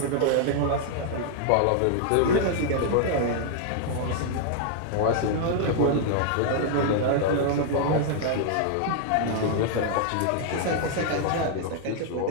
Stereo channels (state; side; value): different; both; correlation 0.00